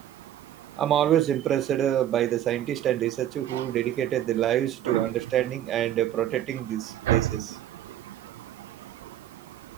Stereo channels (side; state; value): left; quieter; 11.7 dB